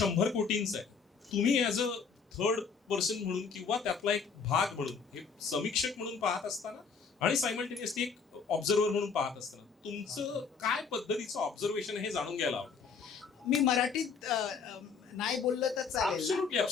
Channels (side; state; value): right; quieter; 5.6 dB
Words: कोटींचा आहे. तुम्ही ऍज अ थर्ड पर्सन म्हणून किंवा त्यातला एक भाग म्हणून हे समीक्षक म्हणून पाहत असताना आणि सायमल्टेनियसली एक ऑब्झर्वर म्हणून पाहत असताना तुमचं काय पद्धतीचं ऑब्झर्वेशन हे जाणून घ्यायला हवं. मी मराठीत नाही बोललं तर चालेल. Absolutely,